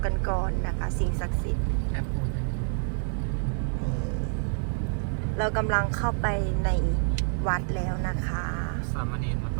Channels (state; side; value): silent; left; 60 dB below the other